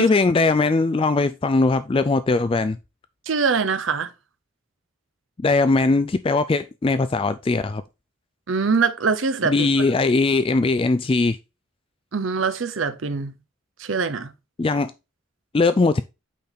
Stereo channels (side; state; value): both; normal; correlation 0.51